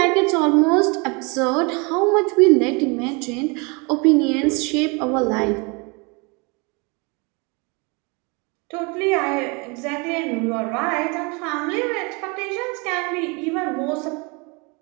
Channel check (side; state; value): left; quieter; 30.0 dB